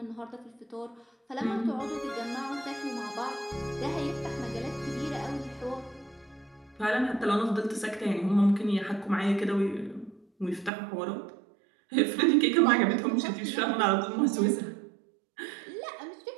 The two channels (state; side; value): drops out; left; at 10.7 s